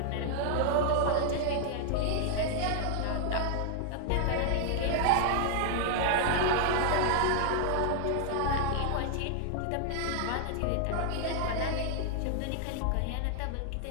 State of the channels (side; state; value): both; different; correlation 0.00